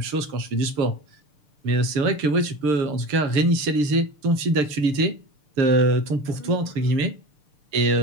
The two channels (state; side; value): late; left; 6.8 ms